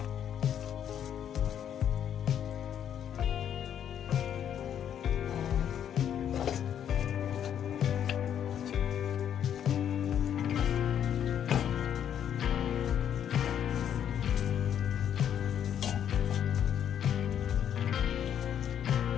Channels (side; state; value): right; quieter; 9.4 dB